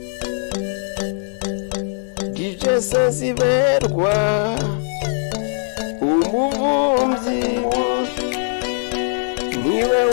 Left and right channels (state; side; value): silent; right; digital silence